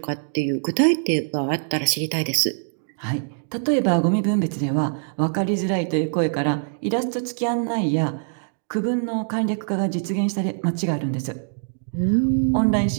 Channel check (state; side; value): silent; left; digital silence